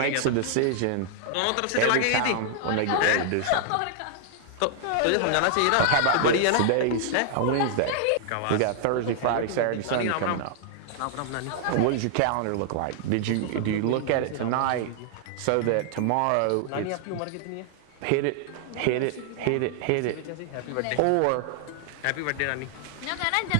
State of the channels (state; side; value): different; both; correlation -0.01